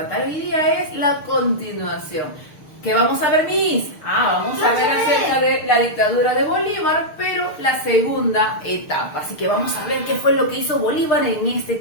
hoy día es la continuación. ¿Qué vamos a ver, Miss? Vamos a ver acerca de la dictadura de Bolívar, pero la segunda etapa. Así que vamos a ver qué fue lo que hizo Bolívar en este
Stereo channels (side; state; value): right; late; 6.6 ms